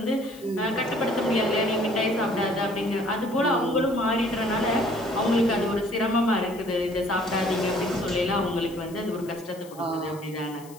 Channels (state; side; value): noise; left; hiss, 22 dB below the sound